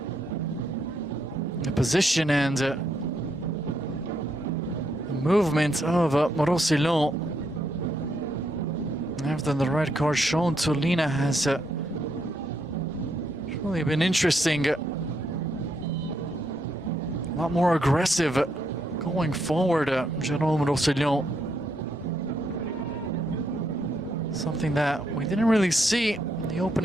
Position and movement of Roussillon. After the red card shown to Lina has really been interesting. A lot more aggressive going forward. General Roussillon. Something that we didn't really see in the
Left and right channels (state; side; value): normal; both; correlation 0.77